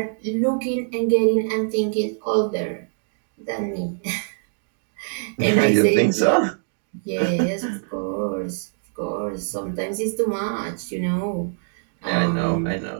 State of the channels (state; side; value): silent; left; 61 dB below the other